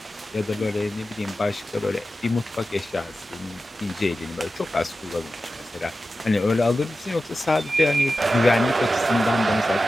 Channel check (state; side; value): normal; both; correlation 0.93